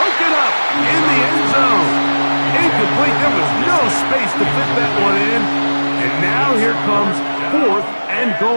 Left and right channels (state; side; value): inverted; both; correlation -1.00